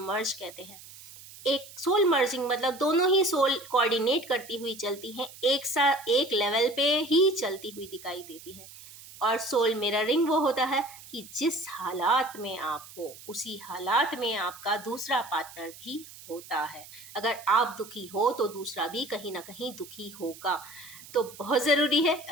मर्ज कहते हैं। एक सोल मर्जिंग मतलब दोनों ही सोल कोऑर्डिनेट करती हुई चलती हैं, एक साथ एक लेवल पे ही चलती हुई दिखाई देती है। और सोल मिररिंग वो होता है कि जिस हालात में आप हो उसी हालात में आपका दूसरा पार्टनर भी होता है। अगर आप दुखी हो तो दूसरा भी कहीं ना कहीं दुखी होगा। तो बहुत ज़रूरी है,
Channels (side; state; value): right; noise; hiss, 18 dB below the sound